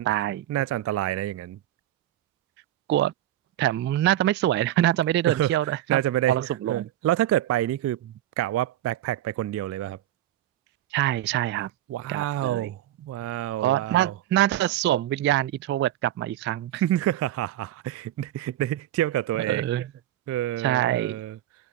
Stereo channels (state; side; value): quieter; left; 13.3 dB